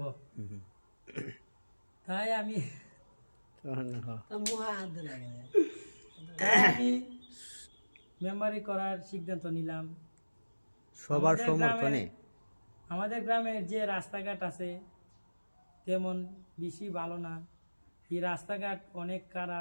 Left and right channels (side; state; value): both; inverted; correlation -1.00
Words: তাই আমি মেম্বারি করার সিদ্ধান্ত নিলাম। সবার সমর্থনে আমাদের গ্রামের যে রাস্তাঘাট আছে তেমন বেশি ভালো না। এই রাস্তাঘাট অনেক